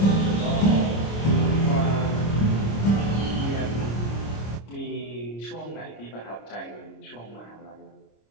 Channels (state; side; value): late; right; 26 ms